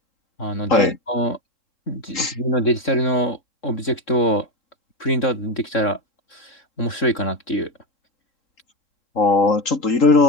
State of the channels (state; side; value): late; right; 3.6 ms